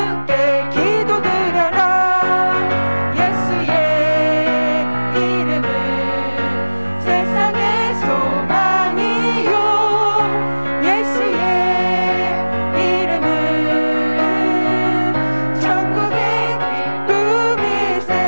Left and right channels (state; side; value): inverted; both; correlation -1.00